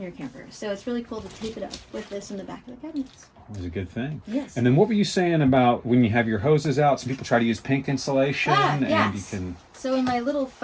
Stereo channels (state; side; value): identical; both; correlation 1.00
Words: your camper. So it's really cool to tape it up with this in the back of the cabinets. That was a good thing. Yes. And then what were you saying about when you have your hoses out? Some people try to use pink insulation, yes. and you can... So in my little